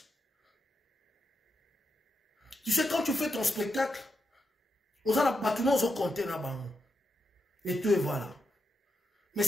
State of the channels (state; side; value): normal; both; correlation 0.86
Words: Tu sais, quand tu fais ton spectacle, on a pas compté là-bas. Et tout, et voilà. Mais